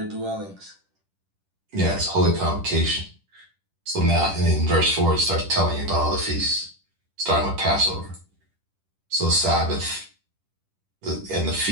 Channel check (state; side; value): late; left; 10 ms